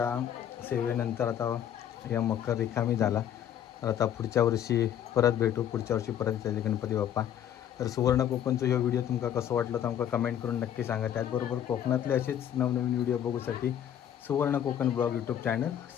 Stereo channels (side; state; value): right; quieter; 10.0 dB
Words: सेवेनंतर आता या मकर रिकामी झाला. तर आता पुढच्या वर्षी परत भेटू. पुढच्या वर्षी परत येतील गणपती बाप्पा. तर सुवर्ण कोकणचा ह्यो व्हिडिओ तुमका कसो वाटलो तर आमका कमेंट करून नक्की सांगा. त्याचबरोबर कोकणातले असेच नवनवीन व्हिडिओ बघूसाठी सुवर्ण Konkan blog YouTube channel